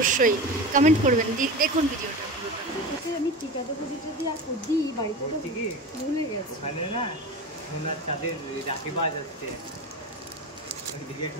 কমেন্ট করবেন। দেখুন ভিডিওটা আমি টিকাটা যদি আর দিই বাড়িতে ভুলে গেছি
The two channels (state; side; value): normal; both; correlation 0.27